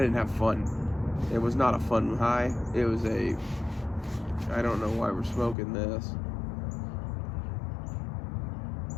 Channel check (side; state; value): right; drops out; at 5.6 s